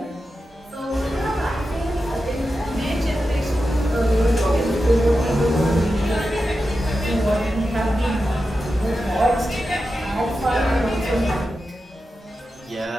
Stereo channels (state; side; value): normal; both; correlation 0.91